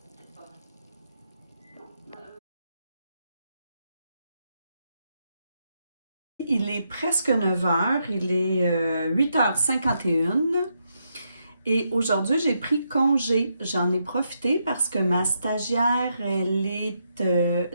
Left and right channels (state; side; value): inverted; both; correlation -0.80